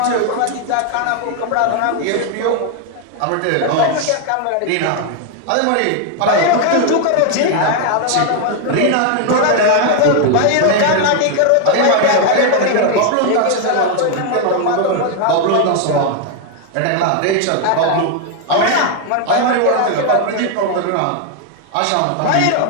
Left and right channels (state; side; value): different; both; correlation 0.01